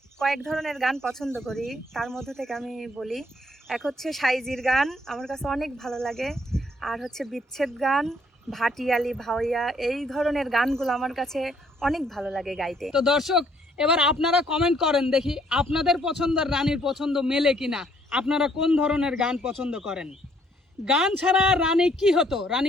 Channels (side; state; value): both; normal; correlation 0.66